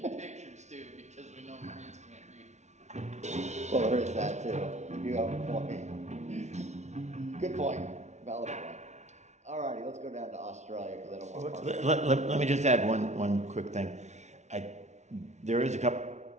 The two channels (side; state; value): left; late; 0.33 ms